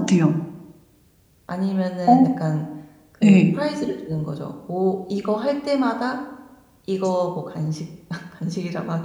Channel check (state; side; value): identical; both; correlation 1.00